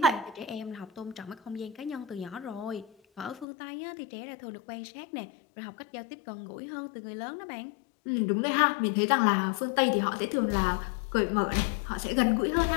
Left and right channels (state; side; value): drops out; right; at 3.5 s